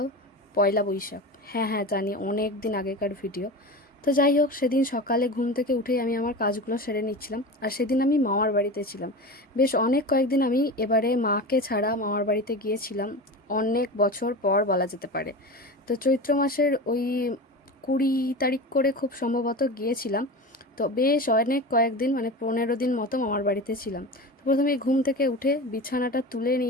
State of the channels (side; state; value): both; normal; correlation 0.29